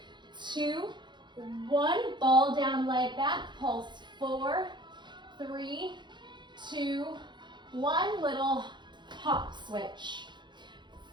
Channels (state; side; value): late; left; 0.22 ms